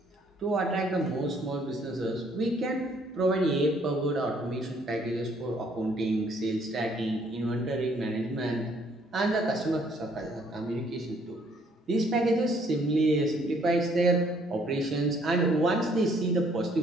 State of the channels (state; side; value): normal; both; correlation 0.64